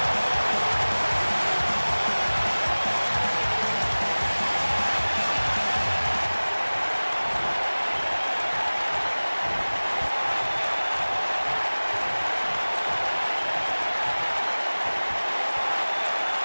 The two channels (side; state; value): both; inverted; correlation -1.00